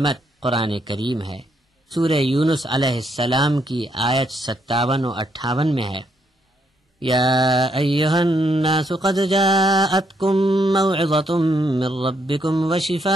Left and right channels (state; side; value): normal; both; correlation 0.75